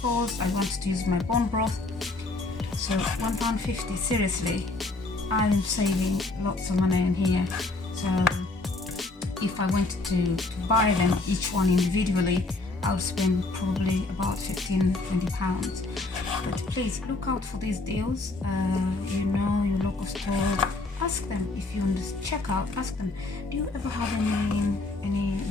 I want to use my bone broth. So £1.50, seriously, I'm saving lots of money in here. So if I wanted to buy them each one individually, I'll spend probably about £15-20. But please look out for these deals. You know, your local store, ask them if you want to check out. Ask them, do you ever have any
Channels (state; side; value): quieter; right; 3.2 dB